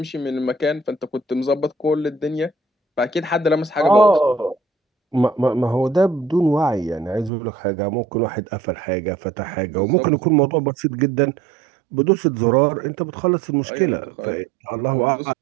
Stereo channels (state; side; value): drops out; left; at 7.3 s